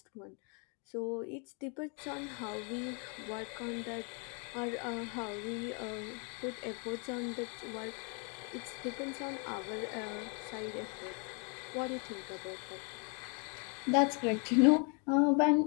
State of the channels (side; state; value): right; quieter; 36.8 dB